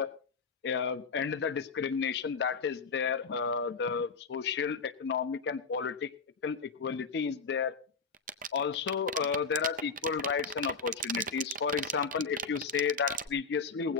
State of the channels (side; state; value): right; quieter; 4.9 dB